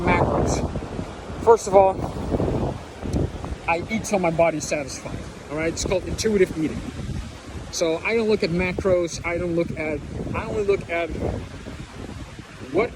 macros. First of all, I eat till my body's satisfied. All right, it's called intuitive eating. So I don't look at macros. I only look at what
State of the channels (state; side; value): identical; both; correlation 1.00